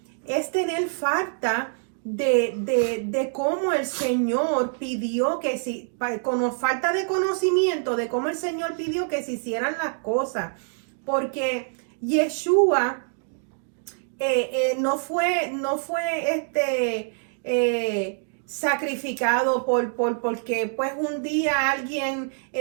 es tener falta de cómo el Señor pidió que si, con falta de conocimiento de cómo el Señor pidió que se hicieran las cosas, porque Yeshua no fue sacrificado porque pues un día alguien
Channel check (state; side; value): silent; left; 61 dB below the other